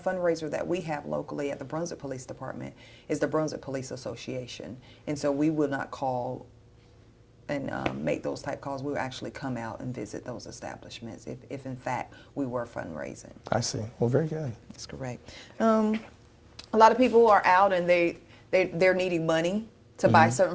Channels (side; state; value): both; identical; correlation 1.00